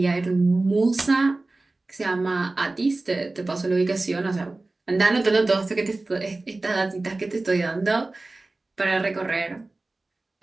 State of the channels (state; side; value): quieter; left; 3.1 dB